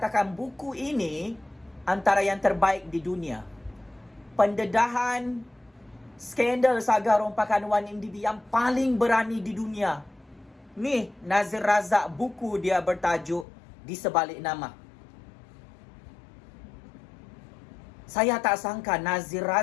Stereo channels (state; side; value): drops out; right; at 13.5 s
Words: buku ini antara yang terbaik di dunia. Pendedahan skandal saga rompakan 1MDB yang paling berani di dunia. Ni Nazir Razak, buku dia bertajuk Di Sebalik Nama. Saya tak sangka Nazir